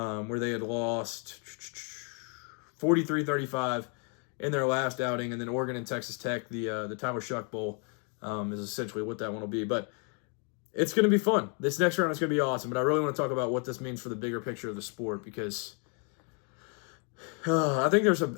they had lost 43-35 in their last outing, and then Oregon and Texas Tech, the Tyler Shuck Bowl, is essentially what that one will be. But it's going to be fun. This next round is going to be awesome, but I really want to talk about what this means for the bigger picture of the sport because I think there's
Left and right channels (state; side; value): quieter; right; 39.0 dB